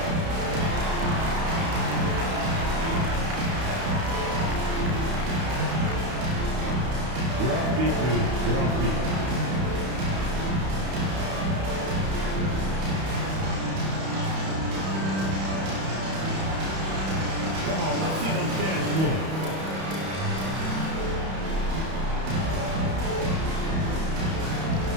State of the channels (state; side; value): late; left; 31 ms